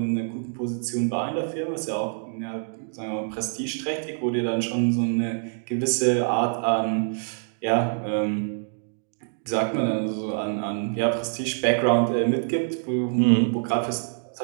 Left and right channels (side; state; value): left; silent; digital silence